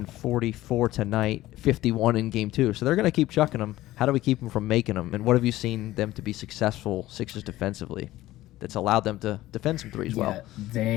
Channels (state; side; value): quieter; right; 16.0 dB